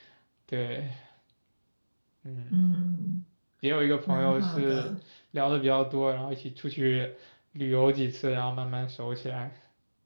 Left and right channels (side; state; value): both; inverted; correlation -1.00